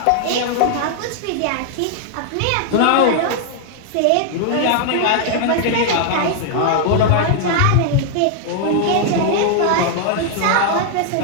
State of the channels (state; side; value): different; both; correlation 0.00